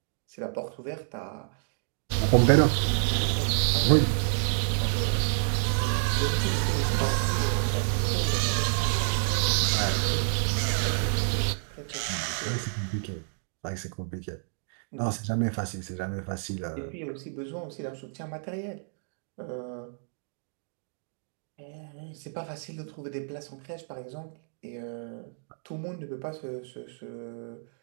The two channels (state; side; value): silent; left; digital silence